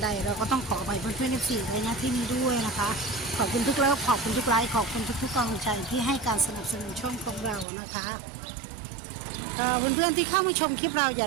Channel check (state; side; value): drops out; left; at 7.7 s